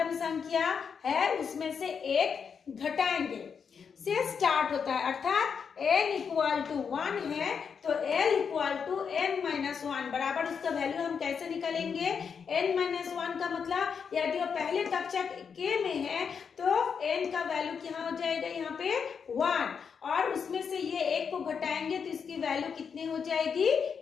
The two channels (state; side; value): quieter; right; 6.5 dB